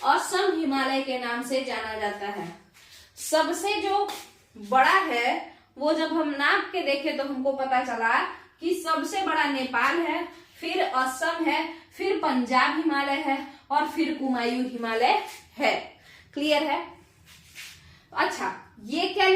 असम हिमालय के नाम से जाना जाता है। सबसे जो बड़ा है वो जब हम नाप के देखे तो हमको पता चला कि सबसे बड़ा नेपाल है, फिर असम है, फिर पंजाब हिमालय है और फिर कुमायूं हिमालय है। क्लियर है? अच्छा, ये क्या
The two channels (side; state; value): both; identical; correlation 1.00